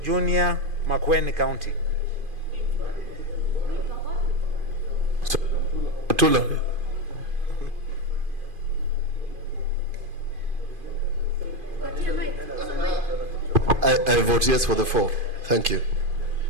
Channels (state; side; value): late; left; 2.5 ms